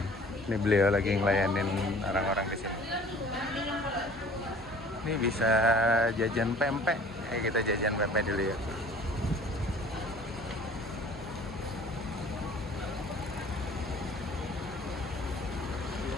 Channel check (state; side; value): normal; both; correlation 0.49